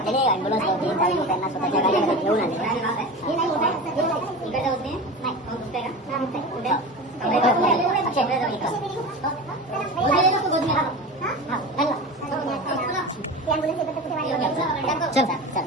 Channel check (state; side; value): normal; both; correlation 0.29